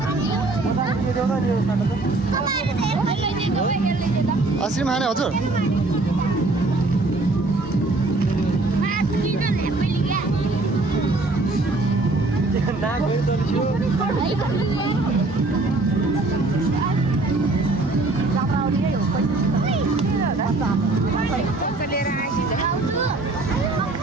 आइसक्रिम खाने हजुर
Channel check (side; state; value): left; quieter; 3.1 dB